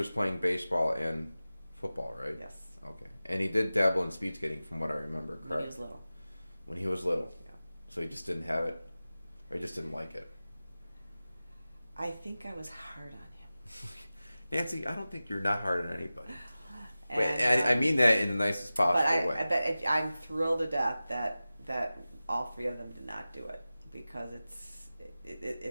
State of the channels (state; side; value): inverted; both; correlation -0.96